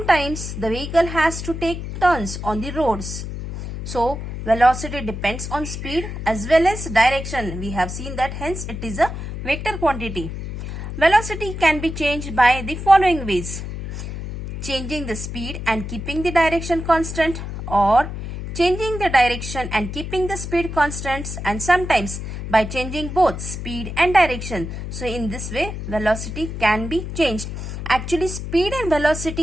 the vehicle has to take turns on the roads. So velocity depends on speed as well as direction. We have seen that, hence it is a vector quantity. Velocity can be changed by the following ways: changing the speed and keeping the direction constant, or changing the direction and keeping the speed constants, and sometimes by changing both speed and direction. So in this way velocity can be changed. Actually speed and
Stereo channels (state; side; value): noise; left; hum, 7 dB below the sound